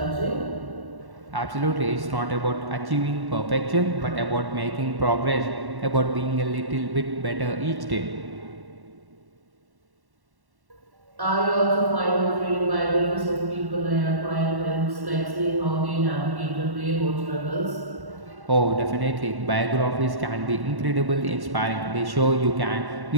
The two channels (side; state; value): left; late; 1.1 ms